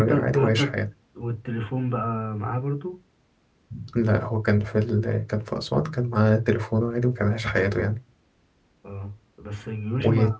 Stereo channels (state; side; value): identical; both; correlation 1.00